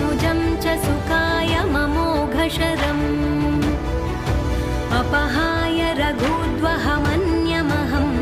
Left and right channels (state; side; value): identical; both; correlation 1.00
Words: च सुखाय ममोघशरम् अपहाय रघुद्वहमन्यमहं